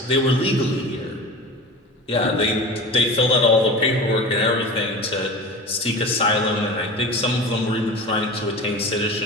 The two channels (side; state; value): both; normal; correlation 0.33